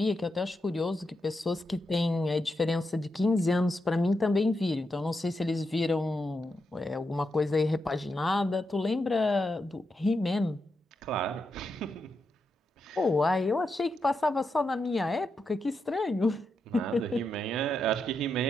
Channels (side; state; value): both; normal; correlation 0.85